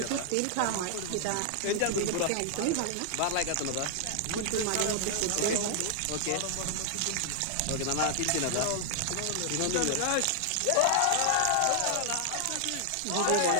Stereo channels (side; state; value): both; different; correlation 0.00